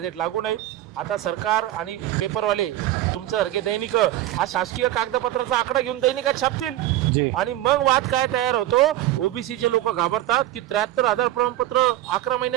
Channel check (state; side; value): quieter; left; 14.5 dB